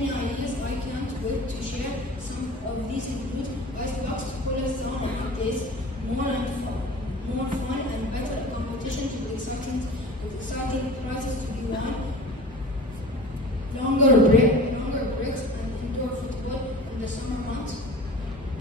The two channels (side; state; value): both; normal; correlation 0.39